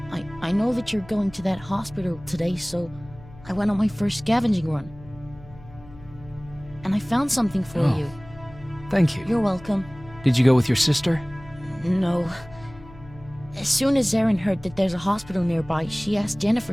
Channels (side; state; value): left; noise; hum, 20 dB below the sound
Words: I know that you're going to that hospital today, so I went on my first scavenging run. And I found something for you. Thank you. You're welcome. Did you go with your sister? No. As soon as Erin heard that there's a hospital nearby, she asked